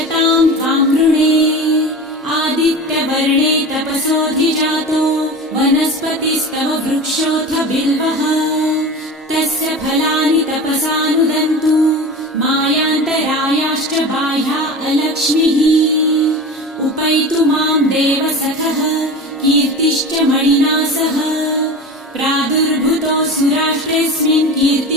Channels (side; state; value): both; normal; correlation 0.31